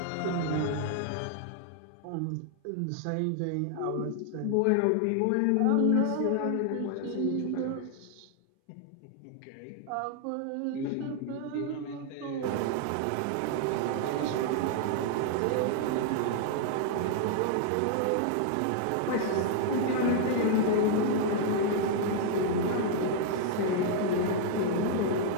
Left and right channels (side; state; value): both; different; correlation 0.00